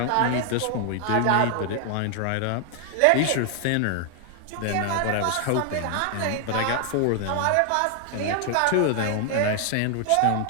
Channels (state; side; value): different; both; correlation 0.00